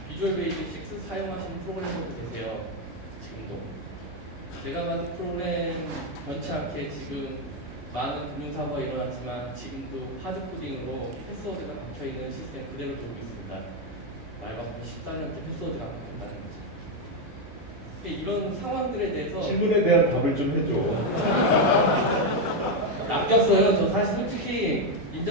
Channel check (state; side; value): normal; both; correlation 0.05